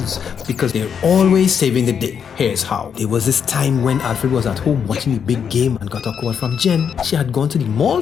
because they're always saving the day. Here's how. There was this time when Alfred was at home watching the big game and got a call from Jen. She had gone to the mall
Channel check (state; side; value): quieter; right; 7.3 dB